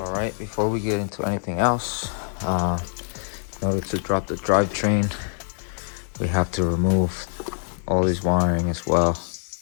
All right, before we get into anything else, in order to drop the drivetrain, we have to remove all this wiring as well.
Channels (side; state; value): right; silent; 62 dB below the other